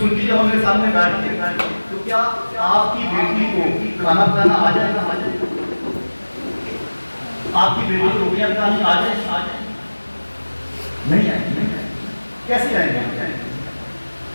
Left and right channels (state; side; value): inverted; both; correlation -1.00